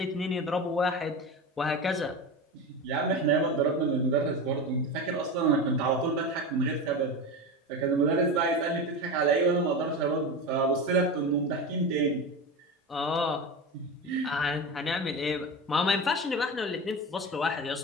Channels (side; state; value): both; normal; correlation 0.24